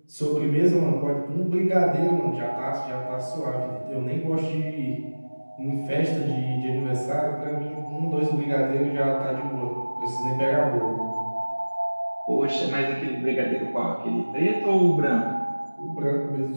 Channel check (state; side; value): inverted; both; correlation -1.00